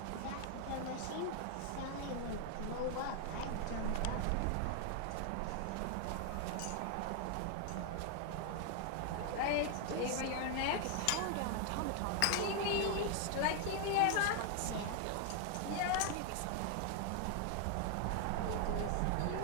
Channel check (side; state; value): both; different; correlation 0.00